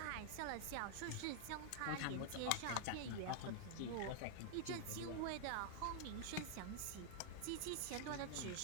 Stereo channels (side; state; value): both; different; correlation -0.01